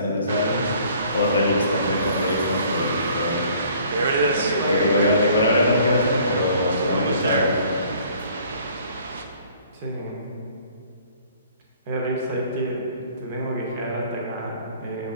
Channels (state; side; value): inverted; both; correlation -0.56